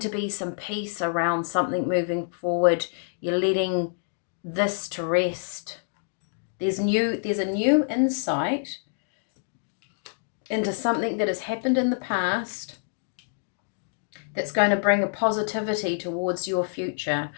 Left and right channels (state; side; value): silent; right; digital silence